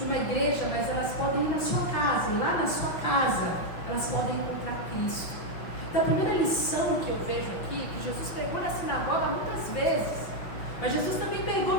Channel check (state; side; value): late; right; 6.0 ms